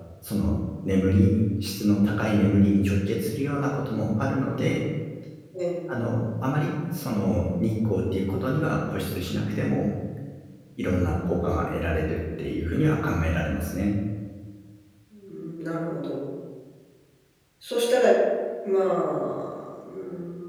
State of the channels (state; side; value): identical; both; correlation 1.00